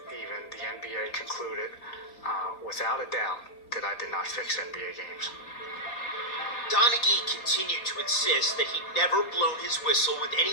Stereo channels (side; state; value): right; late; 4.3 ms